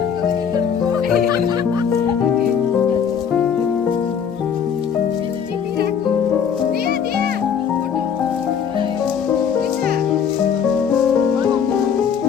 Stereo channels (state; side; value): quieter; right; 7.5 dB